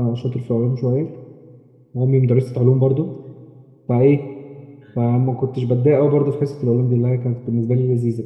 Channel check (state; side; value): identical; both; correlation 1.00